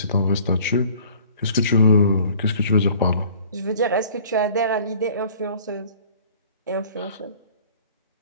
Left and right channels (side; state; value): both; inverted; correlation -0.50